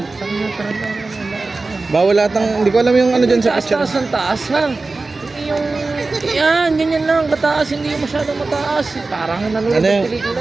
Bawal lahat ng, hindi ko alam yung ano dyan sa picture. taas ng taas ha. Hindi yung, yan, ganyan lang, mataas, hindi yung masyadong mataas. Parang nanonood Ano ng yung, pelikula.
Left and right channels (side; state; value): left; quieter; 3.6 dB